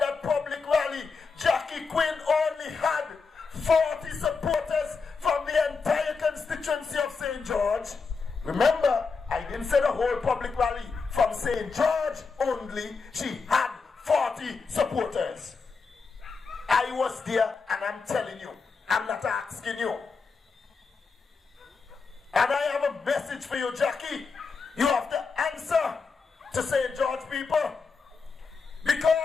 public rally, Jackie Quinn only had 40 supporters from the entire constituency of St. George. Remember, I didn't say the whole public rally. From St. George only, she had 40 supporters. I was there, and I'm telling you, I'm not asking you. And I have a message for you, Jackie. You have to answer to St. George people.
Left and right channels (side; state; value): right; quieter; 4.8 dB